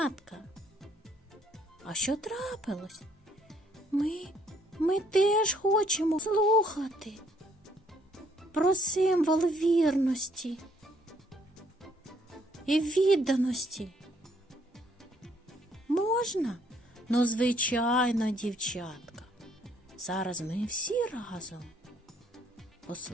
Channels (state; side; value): normal; both; correlation 0.66